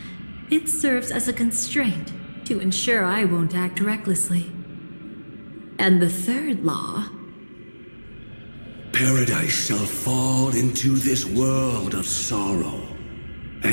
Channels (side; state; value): both; inverted; correlation -1.00